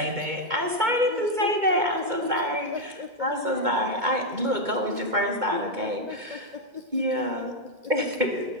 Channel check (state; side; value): late; left; 2.2 ms